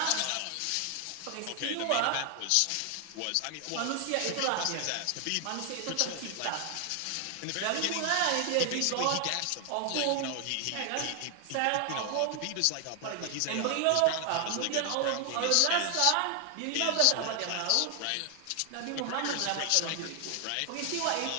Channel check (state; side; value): different; both; correlation 0.00